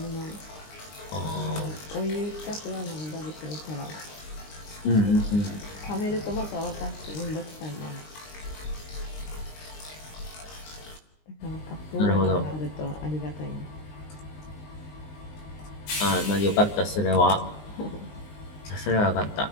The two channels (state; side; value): late; right; 19 ms